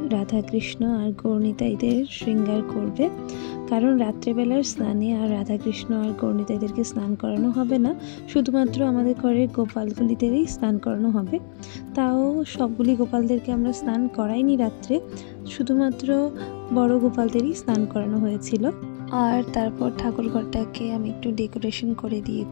রাধা কৃষ্ণ আর গৌরনিতাইদের শৃঙ্গার করবে। কারণ রাত্রেবেলার স্নানে আর রাধা কৃষ্ণ আর গৌরনিতাইদেরকে স্নান করানো হবে না, শুধুমাত্র আমাদের ঘরের গোপালগুলিদেরই স্নান করানো হবে। তাও সবগুলি গোপালদেরকে আমরা স্নান করাইনি রাত্রে, শুধুমাত্র বড় গোপালদেরই স্নান করানো হয়েছিল। আর তারপর ঠাকুরঘরটাকে আমি একটু ডেকোরেশন করে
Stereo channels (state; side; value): silent; right; digital silence